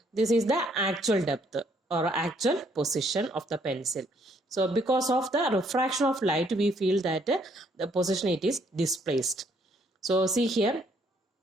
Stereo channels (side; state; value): both; normal; correlation 0.67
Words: this is the actual depth or actual position of the pencil. So because of the refraction of light, we feel that the position it is displaced. So see here,